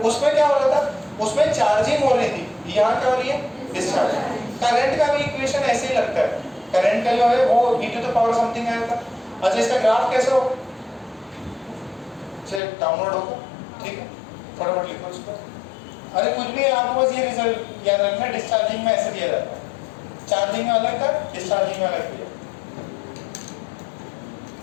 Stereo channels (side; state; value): right; drops out; at 12.6 s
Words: उसमें क्या हो रहा था, उसमें चार्जिंग हो रही थी, यहाँ क्या हो रही है डिस्चार्जिंग। करंट का भी इक्वेशन ऐसे ही लगता है, करंट का जो है वो e to the power something आया था। अच्छा इसका ग्राफ कैसे हो, चलिए डाउनलोड होगा, ठीक है फटाफट लिखो इसको, अरे कुछ भी आपको बस ये रिजल्ट याद रखना, डिस्चार्जिंग में ऐसे दिया जाता है, चार्जिंग में अलग था डिस्चार्जिंग में अलग दिया।